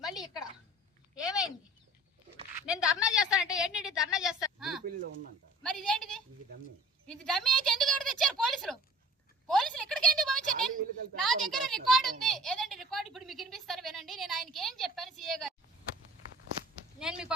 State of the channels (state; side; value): normal; both; correlation 0.47